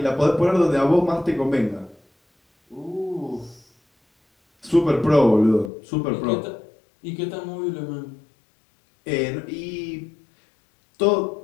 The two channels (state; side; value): drops out; right; at 5.7 s